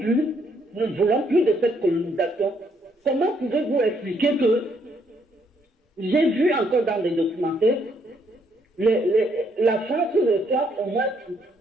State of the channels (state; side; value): normal; both; correlation 0.71